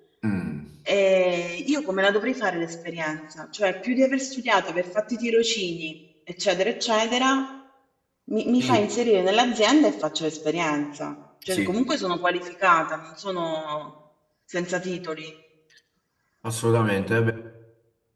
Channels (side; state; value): both; identical; correlation 1.00